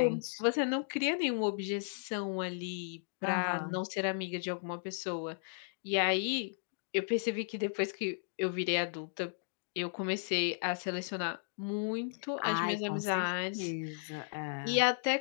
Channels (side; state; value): right; silent; digital silence